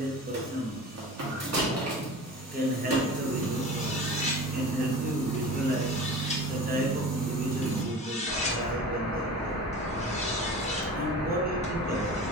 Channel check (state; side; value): normal; both; correlation 0.36